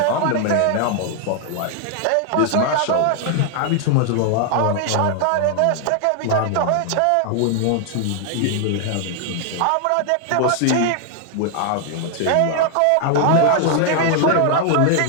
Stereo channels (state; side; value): different; both; correlation 0.00